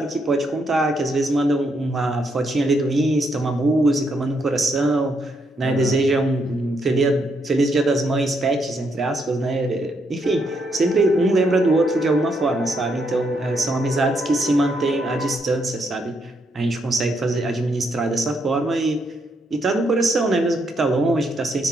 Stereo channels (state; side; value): normal; both; correlation 0.77